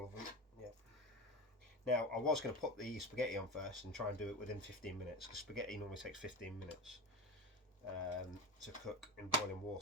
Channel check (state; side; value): normal; both; correlation 0.24